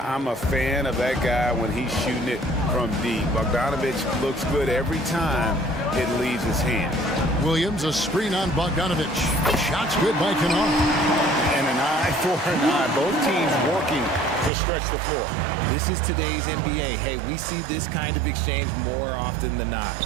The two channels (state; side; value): drops out; left; at 14.5 s